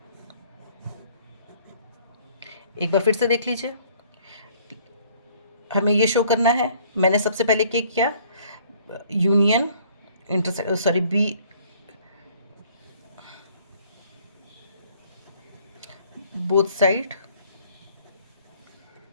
एक बार फिर से देख लीजिए, हमें ये शो करना है। मैंने सबसे पहले क्या किया? Union sorry B both side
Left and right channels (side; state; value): both; inverted; correlation -0.59